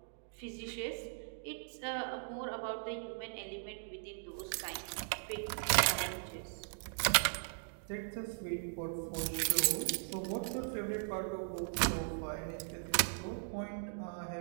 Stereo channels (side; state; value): left; silent; digital silence